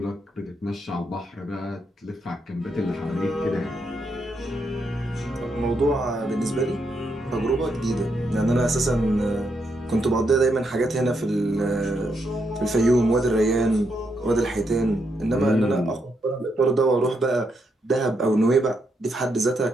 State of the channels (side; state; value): both; normal; correlation 0.79